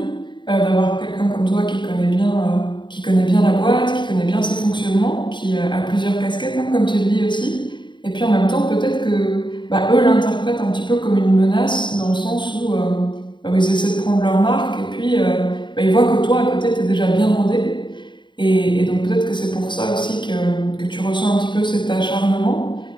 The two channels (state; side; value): late; right; 0.23 ms